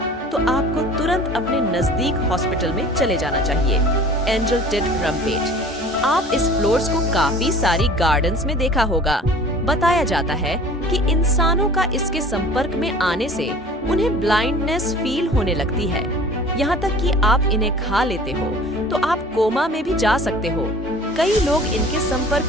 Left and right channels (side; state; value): both; normal; correlation 0.45